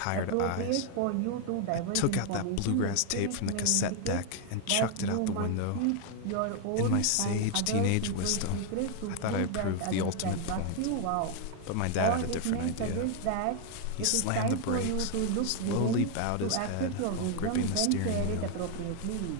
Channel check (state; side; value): different; both; correlation 0.01